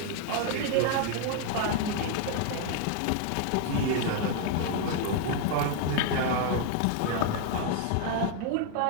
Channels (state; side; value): different; both; correlation 0.00